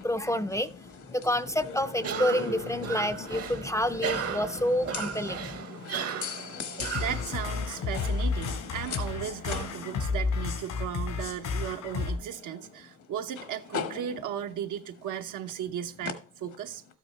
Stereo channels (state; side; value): normal; both; correlation 0.48